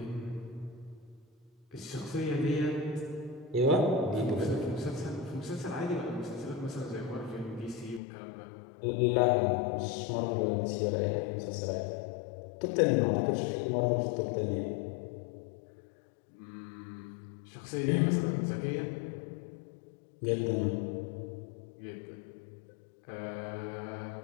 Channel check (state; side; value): drops out; right; at 8.0 s